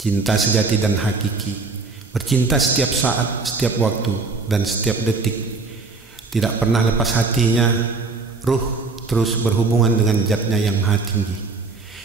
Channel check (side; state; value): left; quieter; 4.0 dB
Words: cinta sejati dan hakiki. Bercinta setiap saat, setiap waktu, dan setiap detik, tidak pernah lepas hatinya, ruh terus berhubungan dengan zatnya yang maha tinggi.